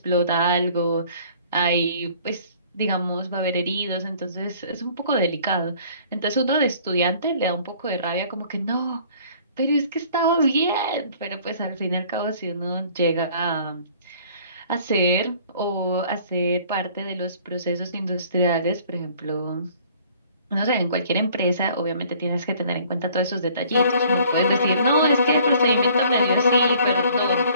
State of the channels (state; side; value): inverted; both; correlation -0.55